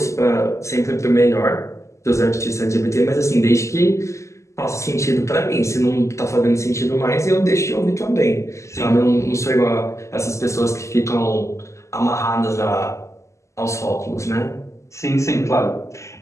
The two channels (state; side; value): late; right; 0.14 ms